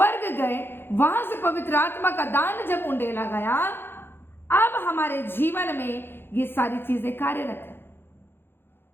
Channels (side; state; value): right; late; 0.10 ms